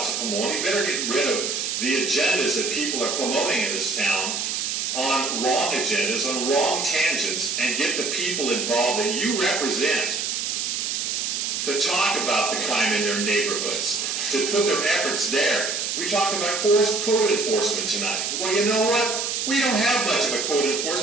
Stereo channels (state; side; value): noise; right; hiss, 1 dB below the sound